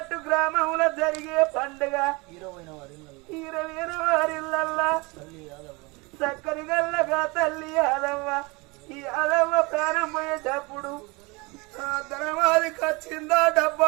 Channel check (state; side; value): quieter; left; 26.4 dB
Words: గ్రామంలో జరిగే పండుగ 20 వారిల్లల్లా చక్కని గల్లగా తల్లి యాదవ్వ ఈ యాదవ్వ ప్రాణం పోయేటప్పుడు ధనమాదికి వచ్చిందా